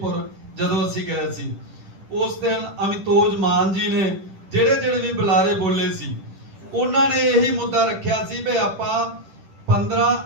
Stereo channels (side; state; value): left; late; 10 ms